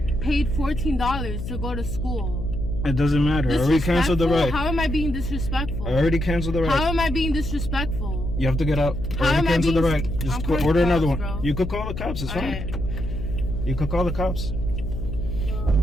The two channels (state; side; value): noise; left; hum, 6 dB below the sound